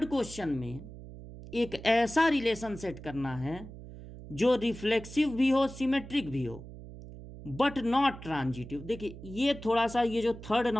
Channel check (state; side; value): noise; right; hum, 14 dB below the sound